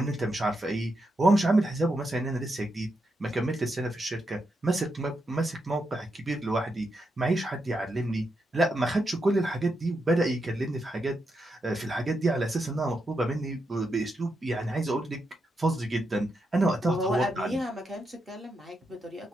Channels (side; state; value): both; normal; correlation 0.84